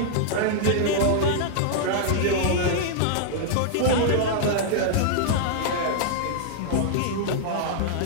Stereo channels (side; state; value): both; different; correlation -0.01